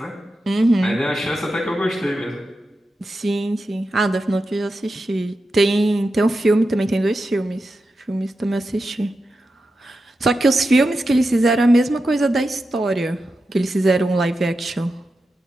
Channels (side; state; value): both; normal; correlation 0.90